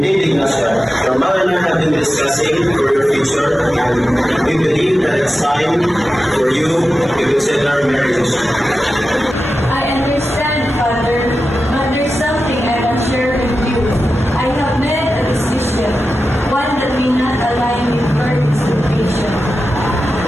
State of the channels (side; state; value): both; normal; correlation 0.93